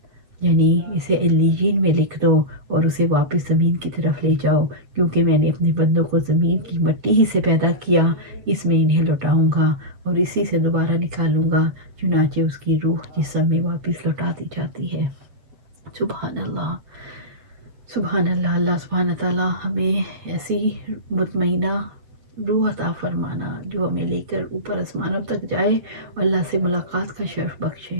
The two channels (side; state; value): left; late; 8.0 ms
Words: یعنی اسے علیین میں لکھ دو اور اسے واپس زمین کی طرف لے جاؤ، کیونکہ میں نے اپنے بندوں کو زمین کی مٹی ہی سے پیدا کیا، اس میں انہیں لوٹاؤں گا اور اسی سے دوبارہ نکالوں گا۔ چنانچہ اس کی روح جسم میں واپس لوٹا دی جاتی ہے۔ سبحان اللہ، سبحان اللہ۔ اللہ سبحانہ تعالیٰ ہمیں ایسی مطمئنہ روح عطا فرمانا جو ہمیں لے کر اوپر آسمانوں تک جائے اور اللہ سے ملاقات کا شرف